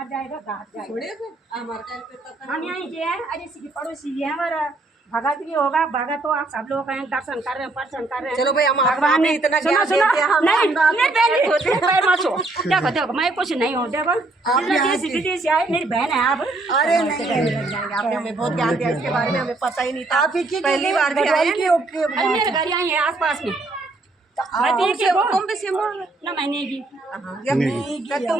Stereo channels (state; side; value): quieter; left; 3.1 dB